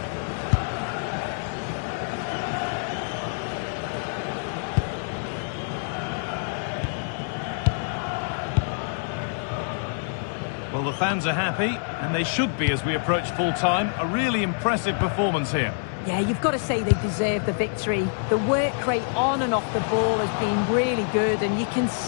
Well, the fans are happy, and they should be as we approach full-time. A really impressive performance here. Yeah, you've got to say they deserve the victory. The work rate on and off the ball has been really good, and you can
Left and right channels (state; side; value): silent; right; digital silence